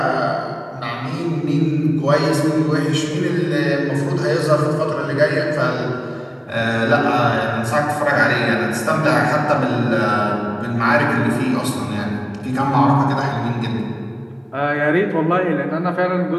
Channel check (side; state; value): both; identical; correlation 1.00